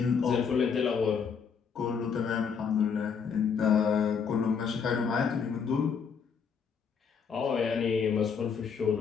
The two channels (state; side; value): quieter; right; 6.3 dB